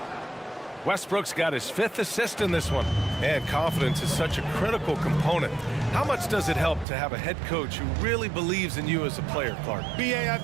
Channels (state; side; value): drops out; left; at 6.9 s